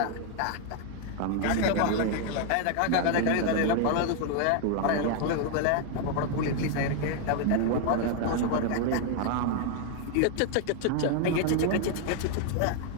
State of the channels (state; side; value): different; both; correlation 0.00